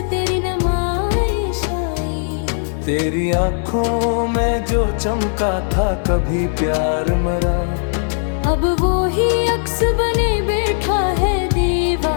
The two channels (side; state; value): right; silent; digital silence